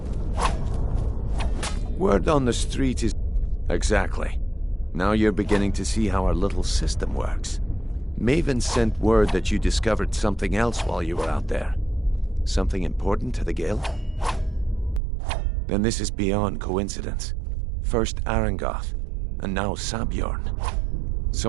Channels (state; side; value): drops out; left; at 15.0 s